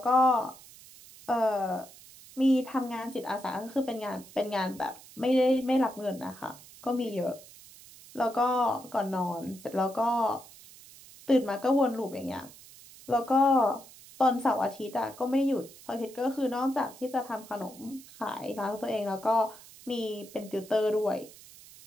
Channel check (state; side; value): noise; right; hiss, 20 dB below the sound